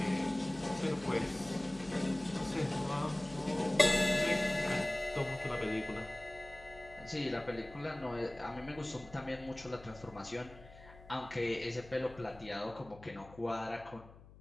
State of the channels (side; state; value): left; noise; hum, 20 dB below the sound